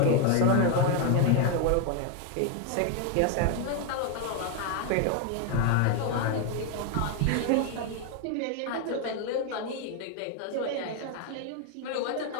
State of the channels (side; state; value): both; different; correlation 0.01